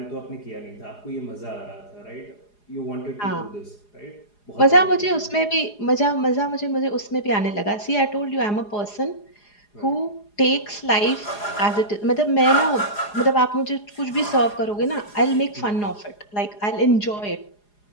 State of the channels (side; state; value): right; late; 4.8 ms